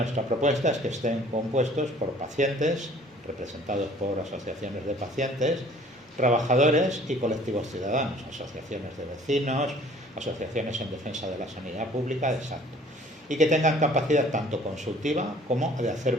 propuesta es que estén compuestos por pacientes, representados por asociaciones de pacientes, trabajadores y colectivos ciudadanos, asociaciones de vecinos, asociaciones en defensa de la sanidad pública, exacto, y que tengan capacidad tanto consultiva como de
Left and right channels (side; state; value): both; normal; correlation 0.53